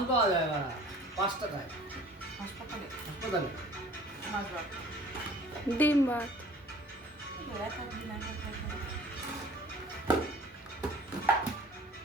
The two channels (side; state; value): both; normal; correlation 0.48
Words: পাওয়া যায় না 5 টাকায় হাসপাতালে হাসপাতালে মাছ ভাত ডিম ভাত